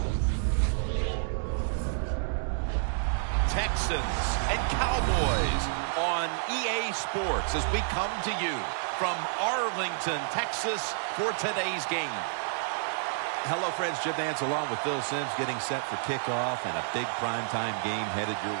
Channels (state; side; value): silent; left; digital silence